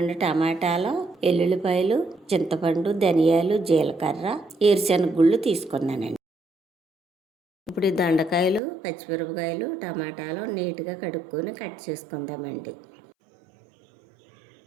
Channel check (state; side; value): drops out; left; at 8.6 s